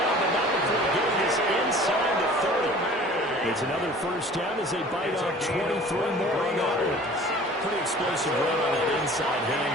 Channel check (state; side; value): normal; both; correlation 0.46